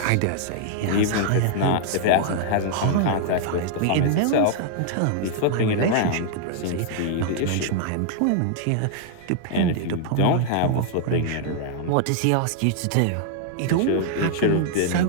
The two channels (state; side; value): different; both; correlation -0.01